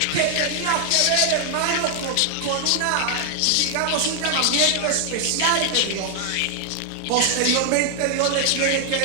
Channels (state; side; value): different; both; correlation 0.00